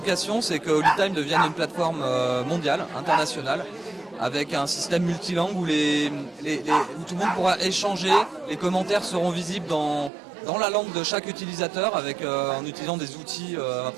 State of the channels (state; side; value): drops out; left; at 10.1 s